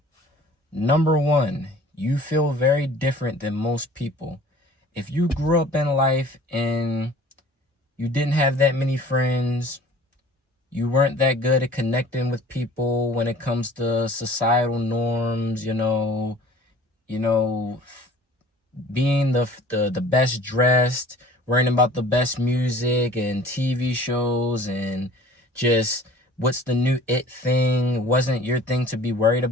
Number 1, you feel very different than most people. If you grew up in life and you didn't have that many friends, you weren't that good at connecting with people when it comes to societal norms, you know, being the best dressed, worrying about the best music and TV shows, and just what's the new it thing wasn't your thing to be worried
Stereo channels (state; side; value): normal; both; correlation 0.48